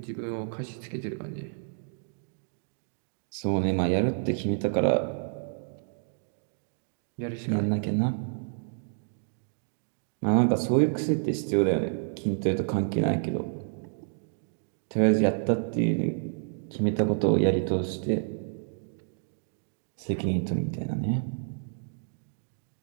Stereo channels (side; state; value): left; silent; digital silence